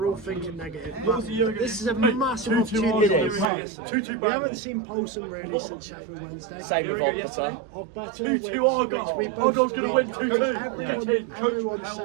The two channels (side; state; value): left; drops out; at 3.5 s